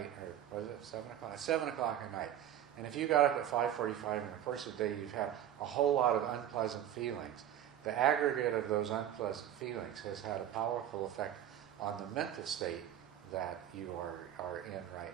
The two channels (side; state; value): left; quieter; 11.0 dB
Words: or was it 7 o'clock? 7 o'clock at night. And if you got up at 5:45 in the course of the day, you've had a whole lot of unpleasant feelings. The aggregate of those unpleasant feelings has had a powerful effect on the mental state that you are in right